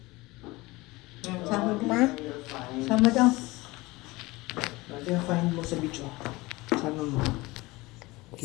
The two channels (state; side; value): quieter; right; 21.5 dB